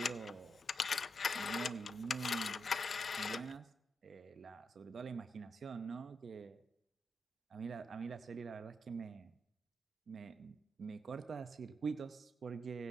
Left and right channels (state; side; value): normal; both; correlation 0.84